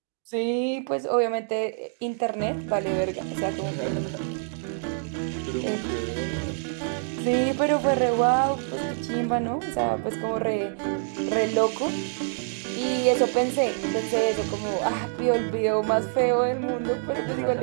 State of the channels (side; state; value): left; silent; digital silence